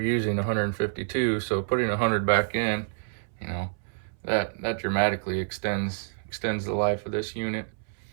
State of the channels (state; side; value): silent; left; 60 dB below the other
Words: 152. So putting 100 back in, you know, that dramatically extends the life of this unit.